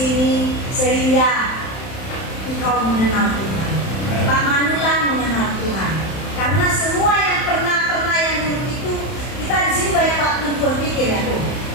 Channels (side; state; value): right; late; 31 ms